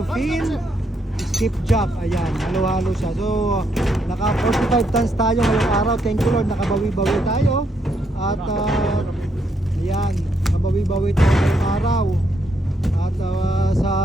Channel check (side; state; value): both; normal; correlation 0.76